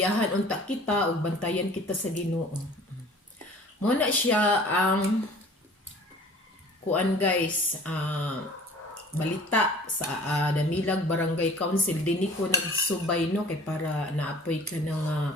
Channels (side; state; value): both; normal; correlation 0.48